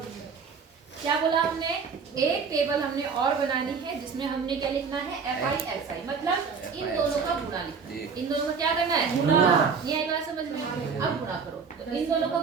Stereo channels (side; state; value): left; quieter; 5.7 dB